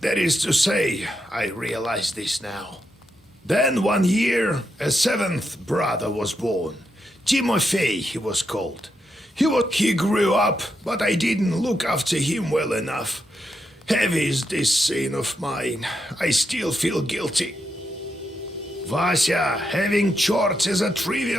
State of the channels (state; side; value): normal; both; correlation 0.83